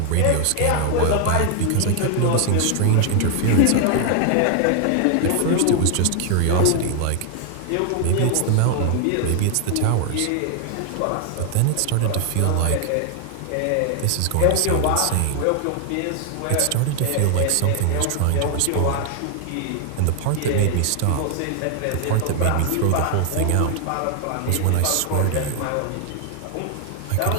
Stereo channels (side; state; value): both; different; correlation 0.00